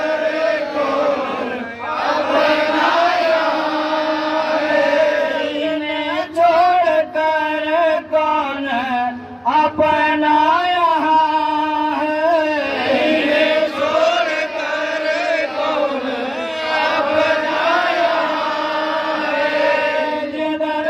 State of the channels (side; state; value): both; identical; correlation 1.00